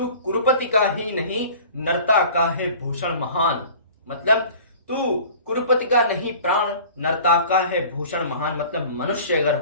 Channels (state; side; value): inverted; both; correlation -0.44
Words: कुरुपति का ही नहीं, नरता का है भूषण महान। मतलब तू कुरुपति का नहीं प्राण, नरता का है भूषण महान, मतलब मनुष्य अगर